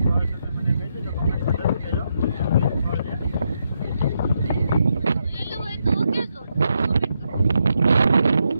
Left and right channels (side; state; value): both; inverted; correlation -0.81